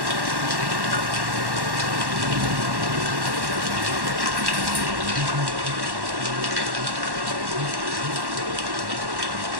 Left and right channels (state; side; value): late; left; 1.1 ms